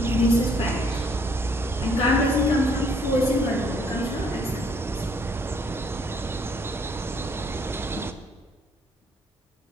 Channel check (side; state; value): both; normal; correlation 0.64